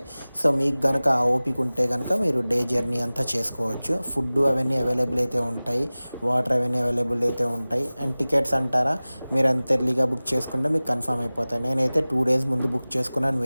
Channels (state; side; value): inverted; both; correlation -0.99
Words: సో మీకు కనుక ఆ ఓపిక ఉంటే కనుక మీరు డే జర్నీ అంతా చేసుకోవచ్చు. ఫుడ్ అవన్నీ అవైలబుల్ అయితే ఉంటాయి, వాటర్ అవన్నీ అవైలబుల్ అయితే ఉంటాయి. అండ్ టికెట్స్ అంటారా, మీరు అంత ఎర్లీగా బుక్ చేసుకుంటే మీకు కన్ఫర్మ్ అయిపోతాయి. నేనైతే 2 days ముందు బుక్ చేసుకున్నాను,